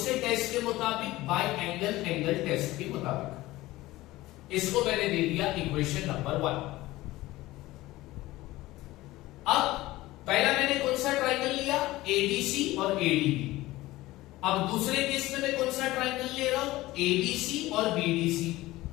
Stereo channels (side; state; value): right; quieter; 17.9 dB